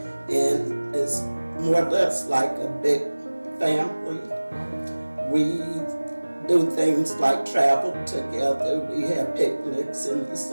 and it's more or less like a big family. We do things like travel together. We have picnics in the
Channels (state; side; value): inverted; both; correlation -1.00